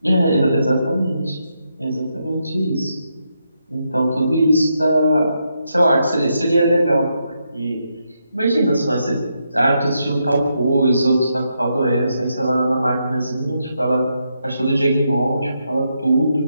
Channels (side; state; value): both; inverted; correlation -0.81